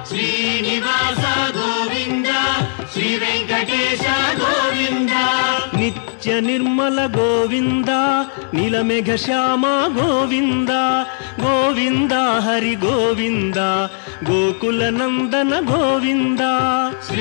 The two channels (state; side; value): silent; right; digital silence